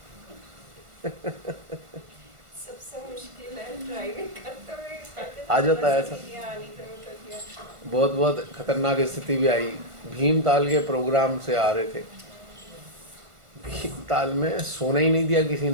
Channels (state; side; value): late; left; 1.4 ms